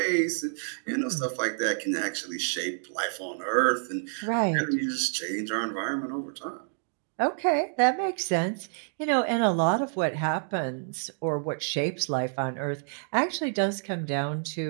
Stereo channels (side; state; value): left; silent; digital silence